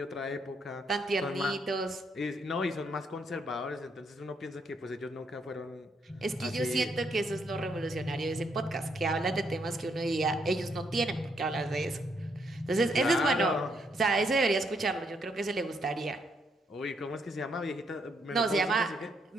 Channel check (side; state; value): both; normal; correlation 0.74